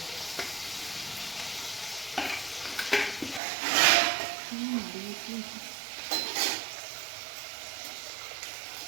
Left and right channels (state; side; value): drops out; left; at 3.4 s